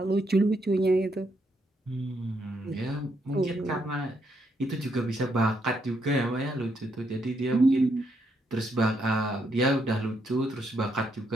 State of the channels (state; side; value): normal; both; correlation 0.76